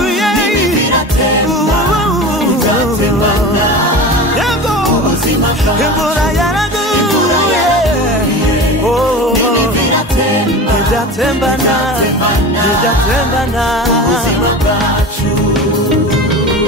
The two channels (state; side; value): normal; both; correlation 0.31